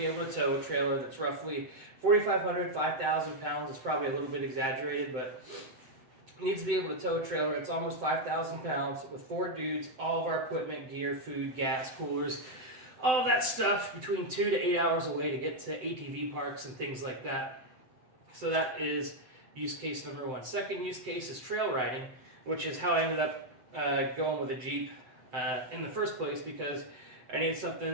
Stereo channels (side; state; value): left; late; 7.8 ms